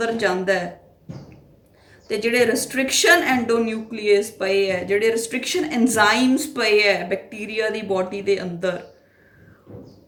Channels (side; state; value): both; identical; correlation 1.00